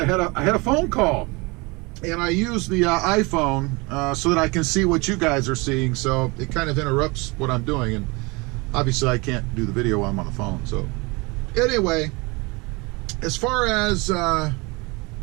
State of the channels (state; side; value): quieter; left; 26.4 dB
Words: had a phone call, and I use the iPhone so that I can see what you guys are seeing. So it kind of interrupts what I'm doing, and obviously I can't do the video while I'm on the phone. So anyway, as far as